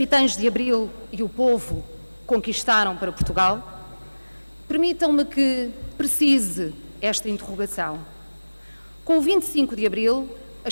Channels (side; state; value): both; inverted; correlation -1.00